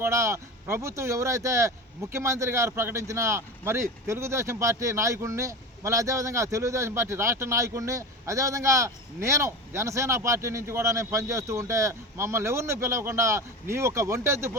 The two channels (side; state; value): both; normal; correlation 0.27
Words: కూడా ప్రభుత్వం ఎవరైతే ముఖ్యమంత్రి గారు ప్రకటించిన మరి తెలుగుదేశం పార్టీ నాయకుడిని, మళ్ళీ అదేవిధంగా తెలుగుదేశం పార్టీ రాష్ట్ర నాయకుడిని, అదేవిధంగా నేను జనసేన పార్టీ నుంచి కూడా నేను పనిచేస్తూ ఉంటే మమ్మల్ని ఎవరిని పిలవకుండా నీ ఒక ఒంటెద్దు